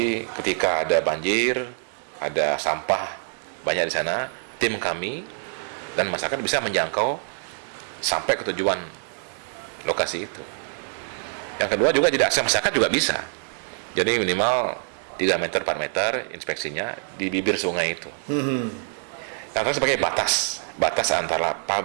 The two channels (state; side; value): silent; left; 62 dB below the other